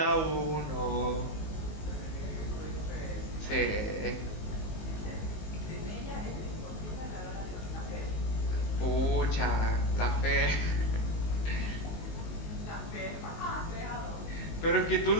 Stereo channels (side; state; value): right; late; 19 ms